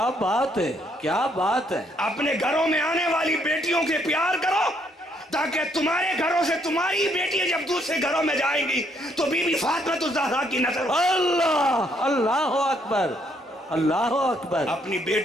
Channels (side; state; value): both; normal; correlation 0.70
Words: بات ہے، کیا بات ہے۔ اپنے گھروں میں آنے والی بیٹیوں کے پیار کرو، تاکہ تمہارے گھروں سے تمہاری بیٹی جب دوسرے گھروں میں جائیں گی تو بی بی فاطمہ الزہرا کی نظر۔ اللہ، اللہ اکبر، اللہ اکبر۔ اپنی